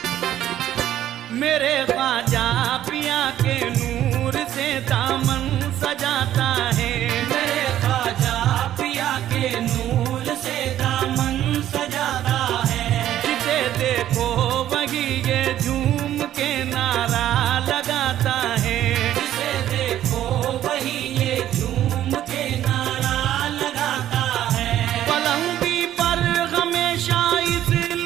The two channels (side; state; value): left; quieter; 12.1 dB